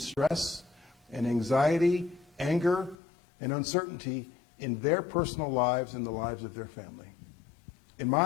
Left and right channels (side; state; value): right; drops out; at 3.0 s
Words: stress and anxiety, anger, and uncertainty in their personal lives and the lives of their family. In